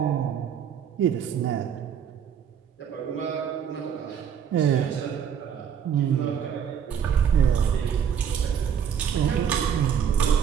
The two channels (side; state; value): left; quieter; 8.1 dB